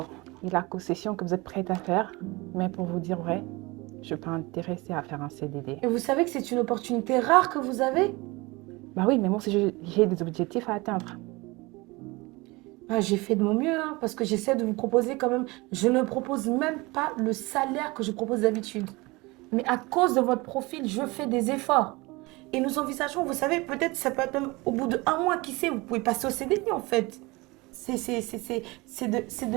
et la concession que vous êtes prête à faire. Mais pour vous dire vrai, je ne suis pas intéressée à faire un CDD. Et vous savez que c'est une opportunité rare que vous avez? Bah oui, mais moi aussi j'ai des objectifs à atteindre. J'ai fait de mon mieux, hein, parce que j'essaie de vous proposer quand même. Je ne propose même pas le salaire que je propose d'habitude. Mais à cause de votre profil, je fais des efforts. Et nous envisageons, vous savez, peut-être ça peut être même au bout de 1 mois, qui sait, vous pouvez passer au CDI en fait. C'est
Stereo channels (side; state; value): left; quieter; 23.6 dB